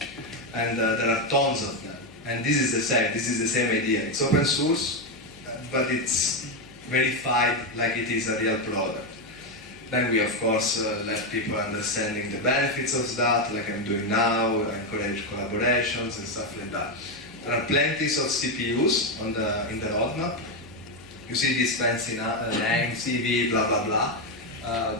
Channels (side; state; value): left; noise; hum, 22 dB below the sound